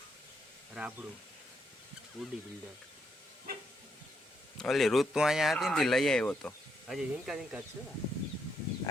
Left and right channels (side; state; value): both; normal; correlation 0.77